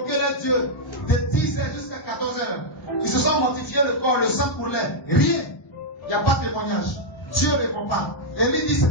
leur Dieu de 10h jusqu'à 14h. Ils se sont mortifiés le corps, le sang pour l'air. Rien. Il n'y a pas de témoignage. Dieu ne répond pas. Élie dit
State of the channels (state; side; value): normal; both; correlation -0.04